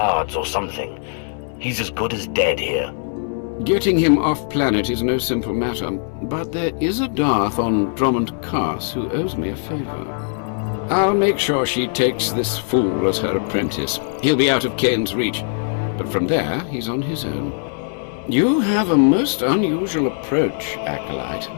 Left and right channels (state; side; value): silent; right; digital silence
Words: or something? He's as good as dead here. Getting him off planet is no simple matter, but there is a Darth on Drummond Cars who owes me a favor. I'll make sure she takes this fool as her apprentice. He'll be out of Kane's reach, but from there, he's on his own. You have a most unusual approach, Acolyte.